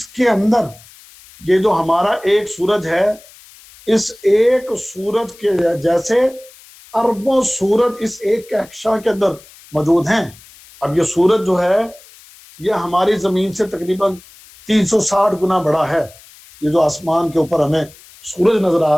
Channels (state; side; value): noise; left; hiss, 23 dB below the sound